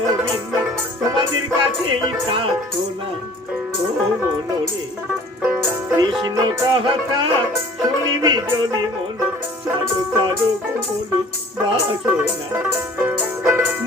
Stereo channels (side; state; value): both; normal; correlation 0.49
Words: তোমাদের কাছেই প্রার্থনা ও মনরে কৃষ্ণ কথা শুনিবি যদি মন সাধু সাধু মনে বাসনা